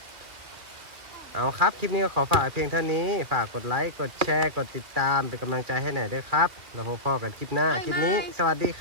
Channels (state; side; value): late; left; 2.1 ms